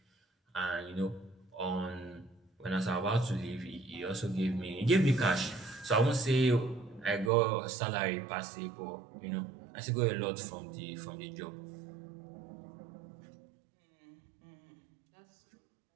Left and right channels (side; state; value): left; drops out; at 7.3 s